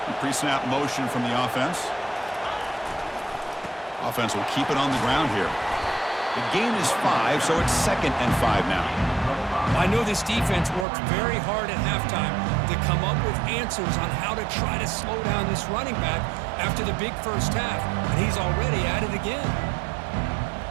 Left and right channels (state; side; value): drops out; left; at 10.9 s